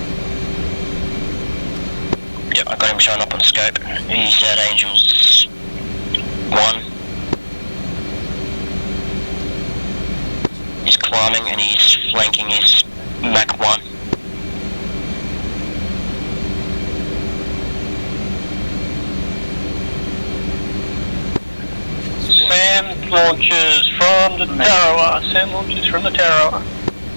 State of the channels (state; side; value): inverted; both; correlation -1.00